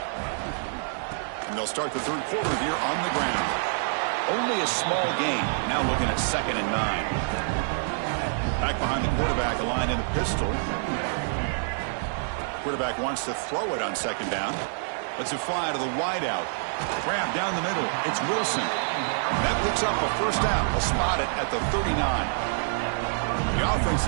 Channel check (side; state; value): left; silent; digital silence